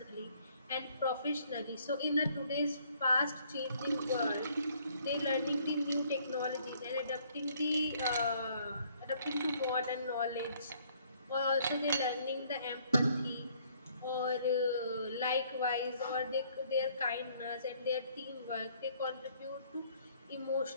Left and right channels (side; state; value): both; inverted; correlation -0.63